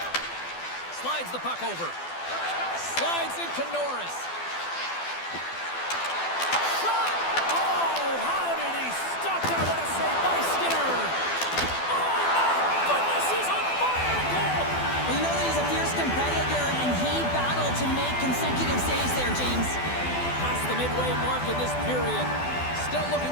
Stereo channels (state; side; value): late; right; 12 ms